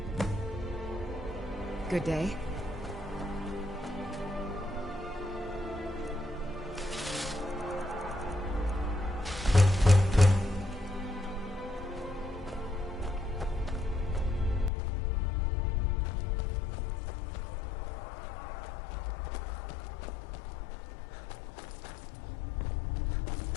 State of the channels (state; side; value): drops out; right; at 14.7 s